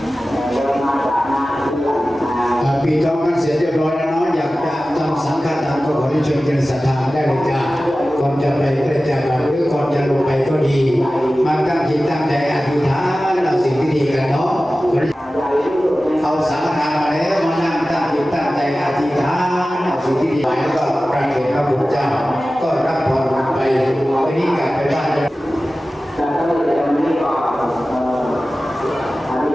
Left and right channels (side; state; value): both; normal; correlation 0.96